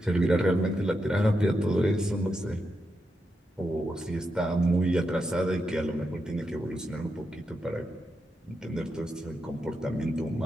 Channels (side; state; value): both; normal; correlation 0.85